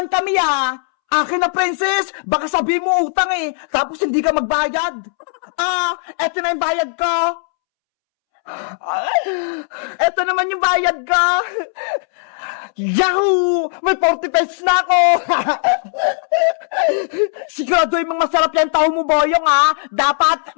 kami, ha! Akin na, princess! Baka sabihin mo utang eh! Tapos hindi ka magbayad! Eto na yung bayad ko! Eto naman yung bayad ko! Yahoo! May 40 pesos na ako! Siguraduhin mong masarap yan tao mo, Boyong, ha? Dapat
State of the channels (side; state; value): right; silent; 68 dB below the other